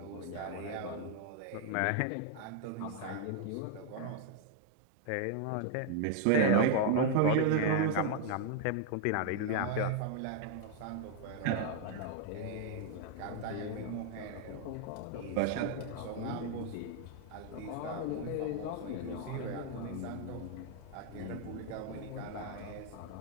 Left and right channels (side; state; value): both; different; correlation 0.00